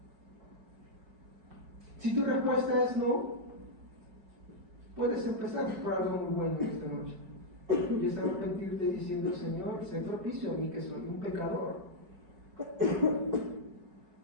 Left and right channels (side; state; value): left; late; 5.3 ms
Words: Si tu respuesta es no, puedes empezar por algo muy bueno esta noche. Y es arrepentirte diciendo, Señor, sé propicio a mí que soy un pecador.